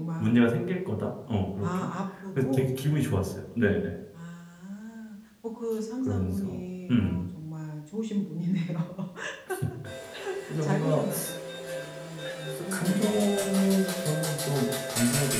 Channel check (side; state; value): both; identical; correlation 1.00